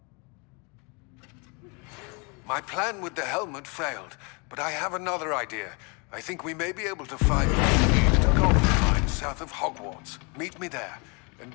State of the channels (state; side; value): quieter; right; 32.1 dB